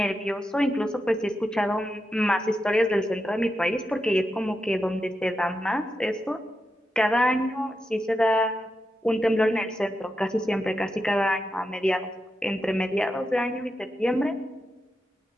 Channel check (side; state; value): both; normal; correlation 0.87